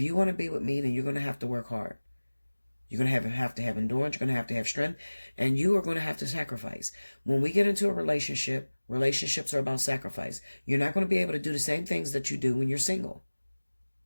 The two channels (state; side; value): inverted; both; correlation -1.00